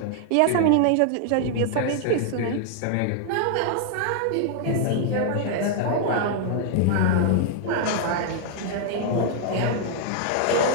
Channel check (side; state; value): both; different; correlation 0.00